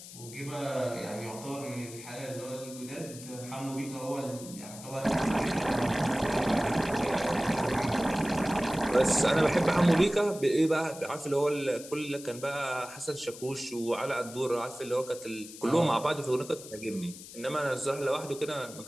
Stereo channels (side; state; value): left; noise; hiss, 15 dB below the sound